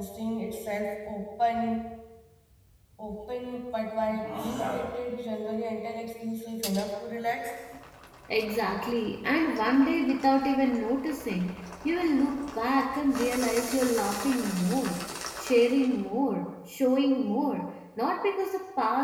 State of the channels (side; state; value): both; identical; correlation 1.00